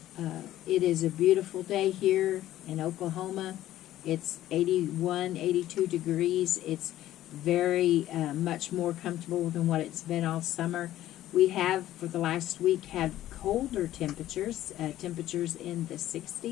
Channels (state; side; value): quieter; right; 13.7 dB